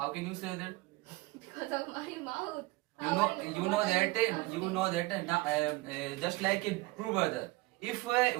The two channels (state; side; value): quieter; left; 21.9 dB